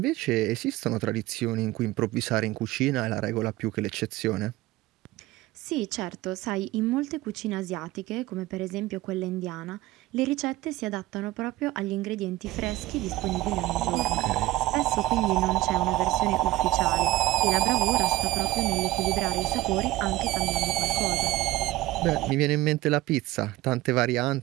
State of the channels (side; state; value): left; quieter; 17.6 dB